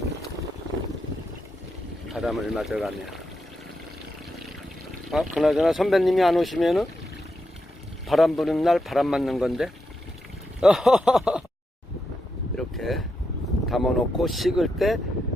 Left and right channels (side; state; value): both; normal; correlation 0.84